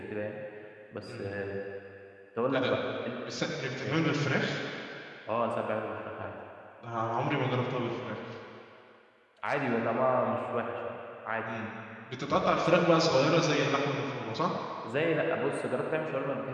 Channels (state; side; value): identical; both; correlation 1.00